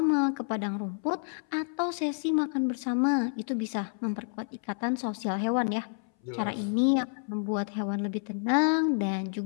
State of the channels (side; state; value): right; silent; 58 dB below the other